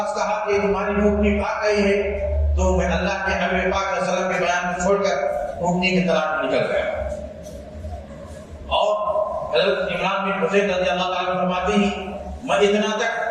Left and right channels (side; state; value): both; identical; correlation 1.00